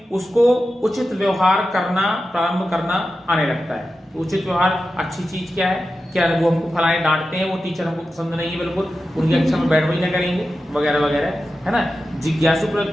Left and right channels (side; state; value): both; normal; correlation 0.92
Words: उसको उचित व्यवहार करना प्रारंभ करना आने लगता है। तो उचित व्यवहार, अच्छी चीज क्या है, क्या वो हमको फलाने डांटते हैं, वो टीचर हमको पसंद नहीं है, बिल्कुल उनकी कक्षा में बैठ ना करेंगे, वगैरह वगैरह, है ना। जिज्ञासु